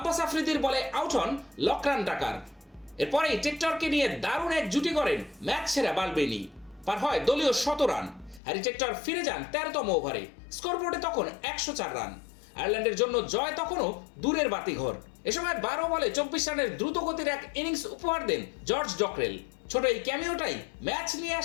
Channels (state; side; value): drops out; right; at 8.4 s